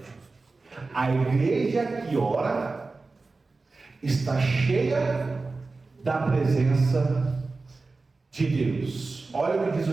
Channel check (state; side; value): quieter; left; 3.8 dB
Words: A igreja que ora está cheia da presença de Deus. Olha o que diz